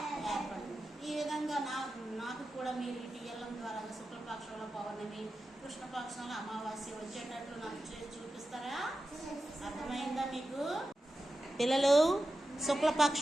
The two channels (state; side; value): normal; both; correlation 0.92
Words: ఏర్పడుతుంది. ఈ విధంగా నాకు కూడా మీరు ఈ టీఎల్ఎం ద్వారా శుక్లపక్షంలో పౌర్ణమి, కృష్ణపక్షంలో అమావాస్య వచ్చేటట్లు నాకు చూపిస్తారా? అర్థమైందా మీకు? పిల్లలు,